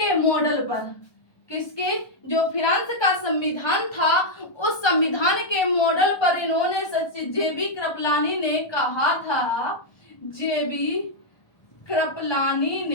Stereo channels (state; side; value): late; right; 1.3 ms